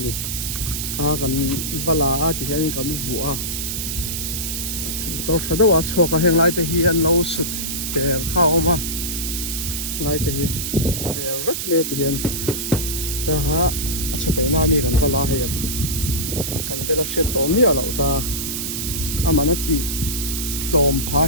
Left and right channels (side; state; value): right; noise; hiss, 3 dB below the sound